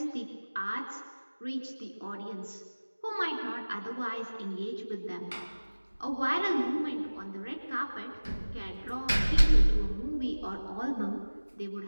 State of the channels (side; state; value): both; inverted; correlation -1.00